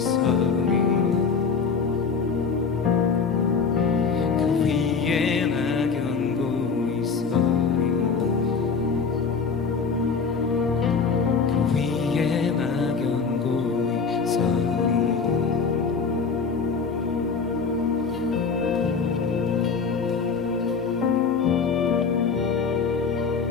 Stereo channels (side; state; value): right; quieter; 5.4 dB